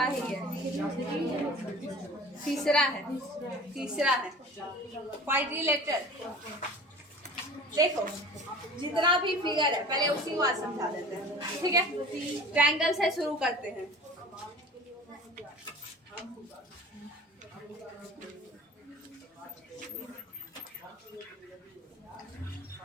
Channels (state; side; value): normal; both; correlation 0.41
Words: ही है, तीसरा है क्वाड्रिलेटरल। देखो जितना भी फिगर है पहले उसी को आज समझा देते हैं, ठीक है। ट्रायंगल से शुरू करते हैं।